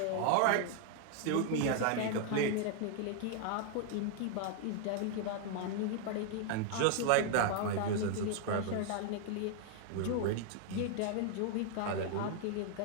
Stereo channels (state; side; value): different; both; correlation 0.00